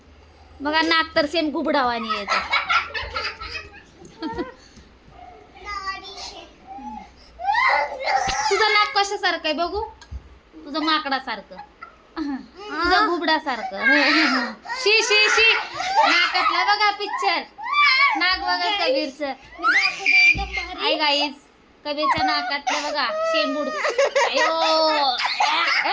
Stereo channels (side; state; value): both; identical; correlation 1.00